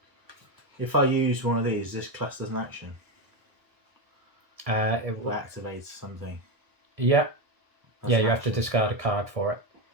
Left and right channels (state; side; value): late; left; 1.5 ms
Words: If I use one of these, this class as an action. It Or activates something. Yeah. That's Yeah, an you have to action. discard a card for it.